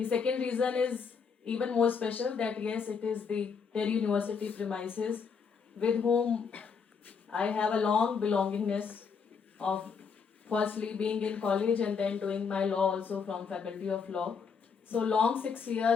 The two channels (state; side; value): quieter; right; 5.9 dB